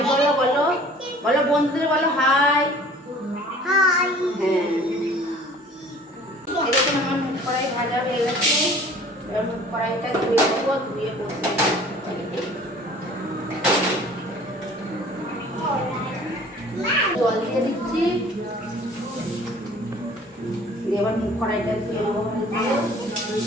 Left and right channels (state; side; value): normal; both; correlation 0.49